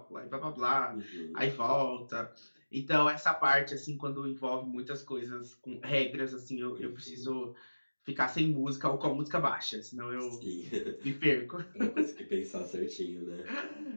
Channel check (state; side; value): inverted; both; correlation -1.00